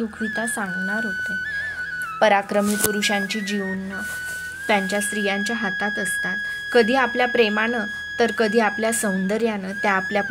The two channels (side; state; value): both; identical; correlation 1.00